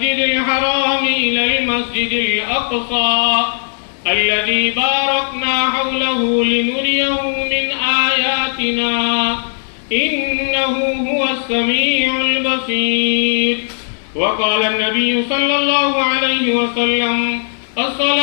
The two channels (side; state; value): right; silent; digital silence